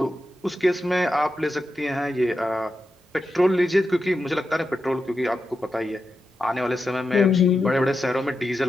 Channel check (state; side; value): normal; both; correlation 0.89